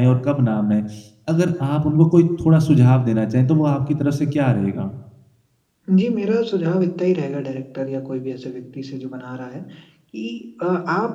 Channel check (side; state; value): both; identical; correlation 1.00